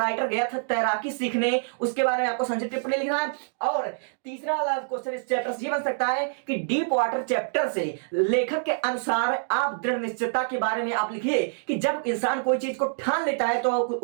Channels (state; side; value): silent; left; digital silence